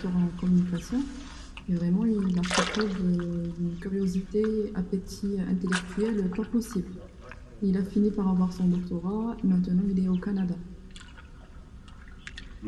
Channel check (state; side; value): identical; both; correlation 1.00